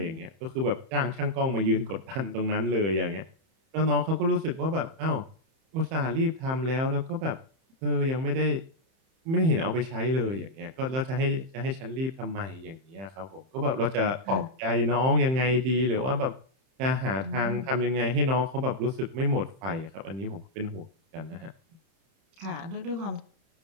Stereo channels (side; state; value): left; late; 31 ms